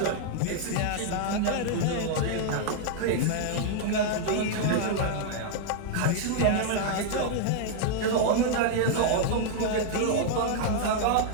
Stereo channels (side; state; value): both; different; correlation -0.01